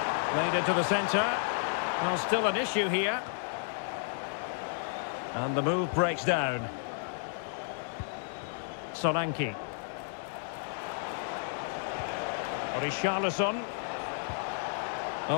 Played into the centre. Well, still an issue here. And the move breaks down. Solanke. Richarlison.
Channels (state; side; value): silent; right; 56 dB below the other